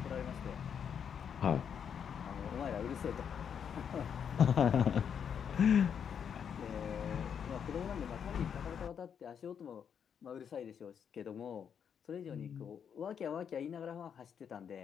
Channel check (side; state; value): right; quieter; 7.7 dB